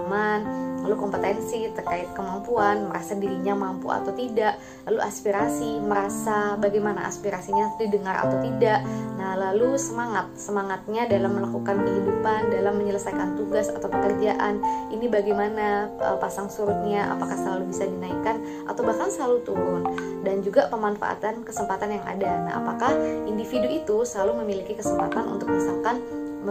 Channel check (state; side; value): identical; both; correlation 1.00